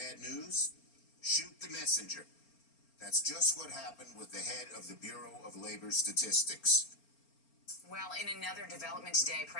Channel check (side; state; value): right; late; 4.4 ms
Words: news? Shoot the messenger. That's just what happened with the head of the Bureau of Labor Statistics. Well, in another development today,